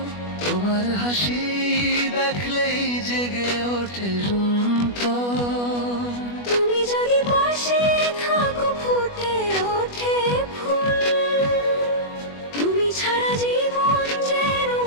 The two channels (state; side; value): late; right; 21 ms